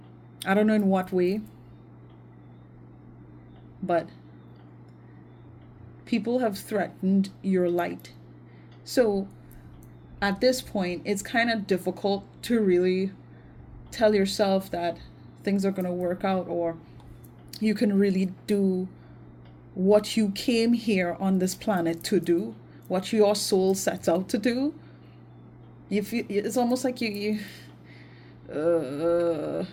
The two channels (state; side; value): identical; both; correlation 1.00